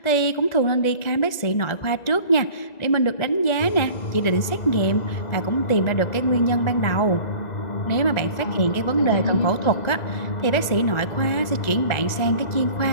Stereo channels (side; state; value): right; late; 1.9 ms